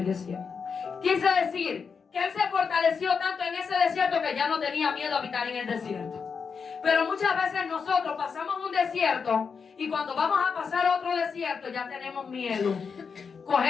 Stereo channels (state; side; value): quieter; right; 5.8 dB